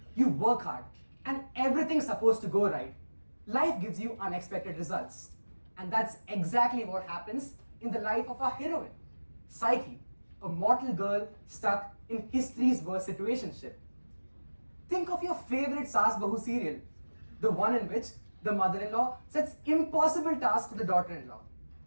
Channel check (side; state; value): both; inverted; correlation -1.00